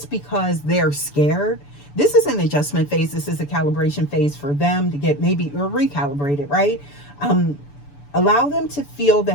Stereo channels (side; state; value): right; late; 6.9 ms